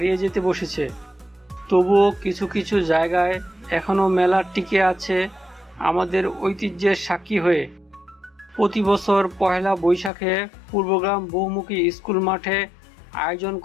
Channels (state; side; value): drops out; right; at 10.1 s